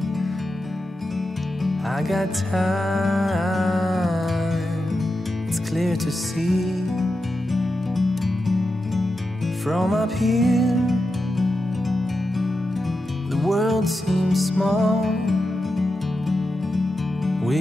I got time. It's clear to see. From up here, the world seems small.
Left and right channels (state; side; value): normal; both; correlation 0.89